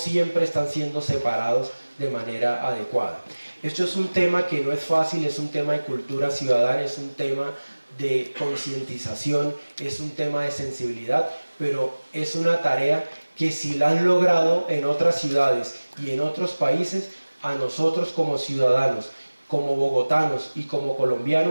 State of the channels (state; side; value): inverted; both; correlation -1.00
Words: están siendo separados de manera adecuada. Esto es un tema que no es fácil, es un tema de cultura ciudadana, es un tema de concientización, es un tema de sensibilidad, pero es una tarea que si la han logrado en otras ciudades y en otros países, a nosotros como ciudadanos, como bogotanos y como